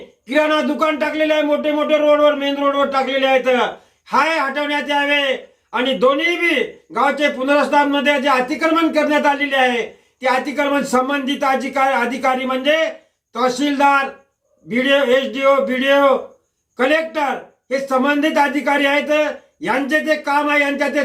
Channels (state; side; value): identical; both; correlation 1.00